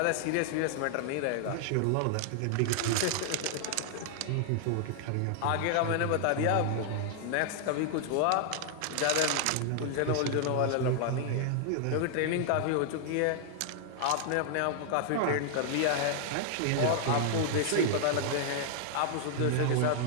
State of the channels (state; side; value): different; both; correlation 0.00